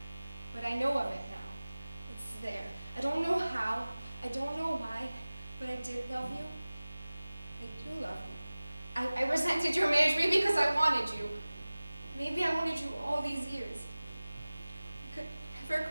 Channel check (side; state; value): both; inverted; correlation -0.98